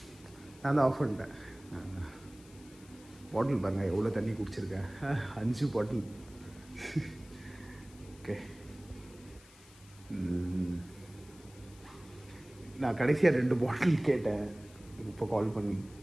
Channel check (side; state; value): left; noise; hiss, 23 dB below the sound